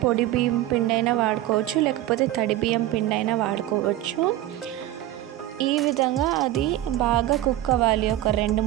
పొడి బియ్యం పిండి అయినా వాడుకోవచ్చు, లేకపోతే తడి బియ్యం పిండి అయినా వాడుకోవచ్చు. ఈ విధంగా అది బాగా కుక్ అవ్వాలి ఒక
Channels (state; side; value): quieter; left; 14.3 dB